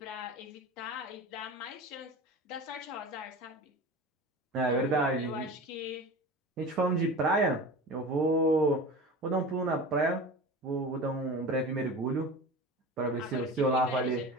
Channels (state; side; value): normal; both; correlation 0.33